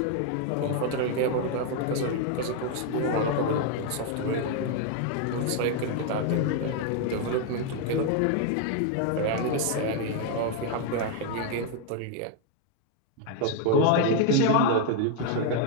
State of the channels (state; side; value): different; both; correlation 0.00